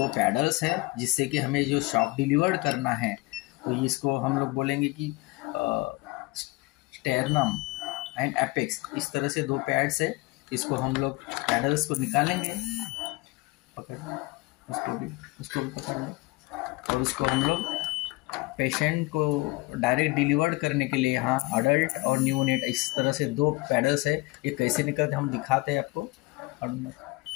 पैडल्स है, जिससे कि हमें जो शॉक डिलीवर्ड करना है तो इसको हम लोग बोलेंगे कि स्टेरनम एंड एपेक्स, इस तरह से 2 पैड्स है। इसको हम लोग पैडल्स को निकालेंगे, पकड़ उसको भी पकड़ लो, और उसको हम लोग पेशेंट को डायरेक्ट डिलीवर्ड करने के लिए यहाँ अडल्ट और न्यूनेट, इस तरह से 2 पैडल्स है। ये कैसे निकलते हम दिखाते हैं आपको।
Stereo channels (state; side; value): quieter; right; 22.6 dB